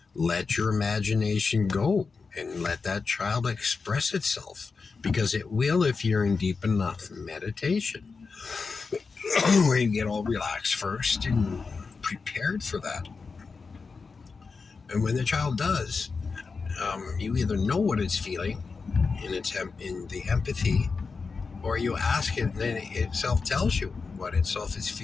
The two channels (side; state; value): right; quieter; 4.7 dB